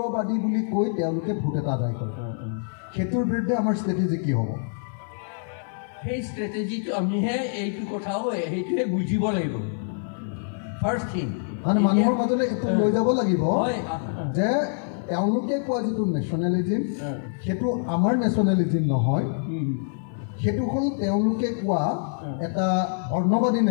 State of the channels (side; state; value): right; silent; 59 dB below the other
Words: বুলি কৈ তেওঁলোকে ভোট এটা আদায় কৰে সেইটোৰ বিৰুদ্ধে আমাৰ ষ্ট্ৰেটেজি কি হ'ব সেই ষ্ট্ৰেটেজিটো আমিহে এইটো কথাও সেইটোহে বুজিব লাগিব ফাৰ্ষ্ট থিং মানে মানুহৰ মাজলৈ এইটো লৈ যাব লাগিব যে তেওঁলোকে কোৱা যিটো নেশ্যনেলিজিম সেইটো আমাৰ নেশ্যনেলিজিম নহয় সেইটো হ'ল তেওঁলোকে কোৱা এটা বৰ্ণবাদী